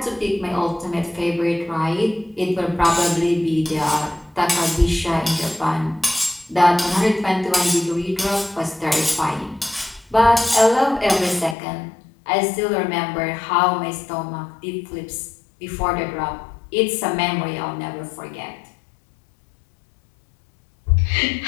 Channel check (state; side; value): drops out; right; at 11.6 s